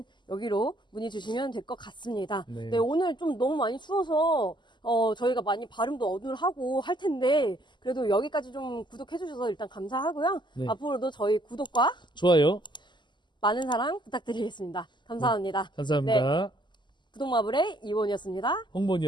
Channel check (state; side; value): late; right; 0.22 ms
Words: 여기로 문의 주시면 될 것 같습니다. 네. 네, 오늘 좀 너무 많이 추워서 저희가 많이 발음도 어눌하고 할 텐데 그래도 여기까지 좀 구독해 주셔서 일단 감사하고요. 네. 앞으로도 저희 구독과 좋아요. 많은 사랑 부탁드리겠습니다. 감사합니다. 감사합니다. 구독마블의 이원이었습니다.